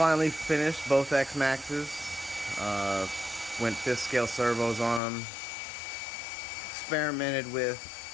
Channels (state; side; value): drops out; right; at 5.0 s